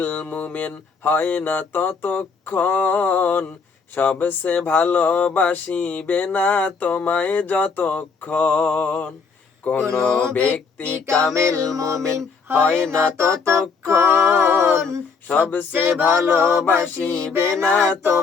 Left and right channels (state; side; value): quieter; right; 5.1 dB